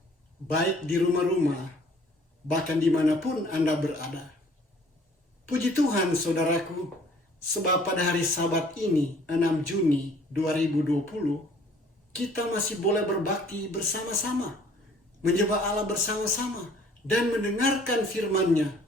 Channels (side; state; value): both; normal; correlation 0.56